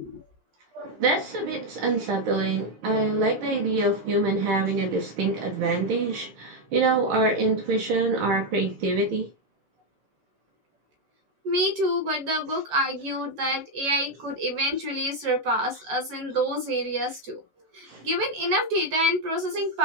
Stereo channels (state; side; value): late; left; 6.3 ms